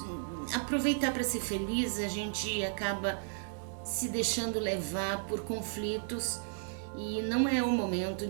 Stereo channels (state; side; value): silent; left; digital silence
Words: aproveitar para ser feliz, a gente acaba se deixando levar por conflitos e não é o momento